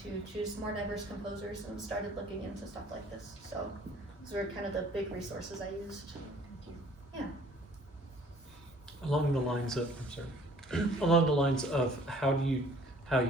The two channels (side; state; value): both; normal; correlation 0.55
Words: to choose more diverse composers and started looking into stuff like this. So it's Those were kind of the big resources I used. Along the lines of, I'm sorry, along the lines of how you